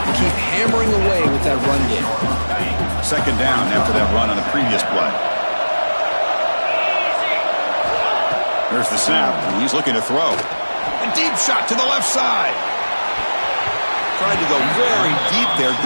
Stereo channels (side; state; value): both; inverted; correlation -1.00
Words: keep hammering away with that run game. Second down after that run on the previous play. There's the snap, and he's looking to throw. A deep shot to the left side. Tried to go very deep there.